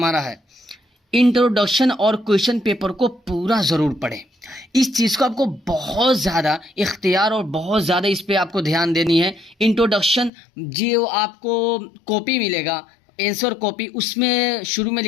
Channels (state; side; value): drops out; right; at 10.3 s